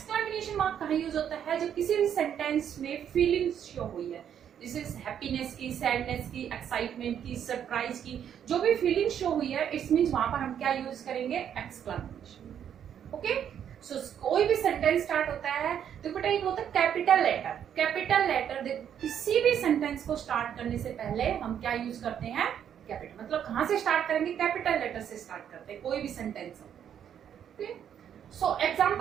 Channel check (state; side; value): quieter; left; 9.1 dB